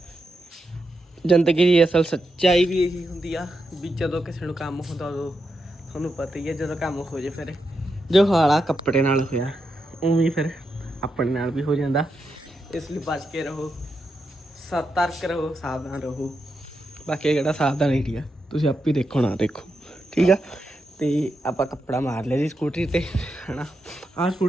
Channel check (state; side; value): normal; both; correlation 0.85